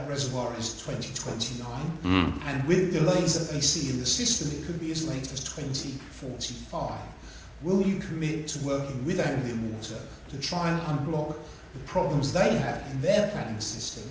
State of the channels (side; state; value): both; identical; correlation 1.00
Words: reservoir is 2029, and with delays that they see in the system, it could be as late as 2045. Will you commit to working with Anglian Water to try and unblock the problems they have in their planning system